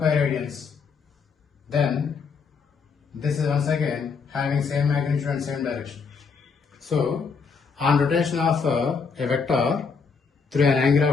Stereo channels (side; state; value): right; quieter; 5.3 dB